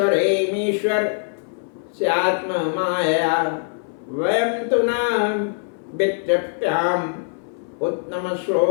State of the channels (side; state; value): right; silent; 64 dB below the other